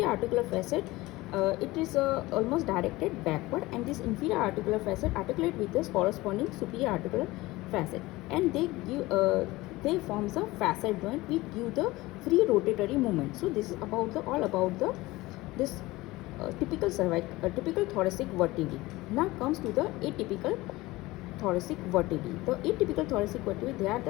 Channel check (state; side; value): quieter; right; 19.8 dB